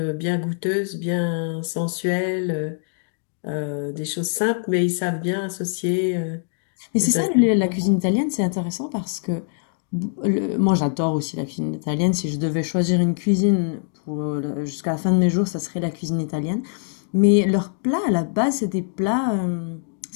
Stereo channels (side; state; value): right; silent; 63 dB below the other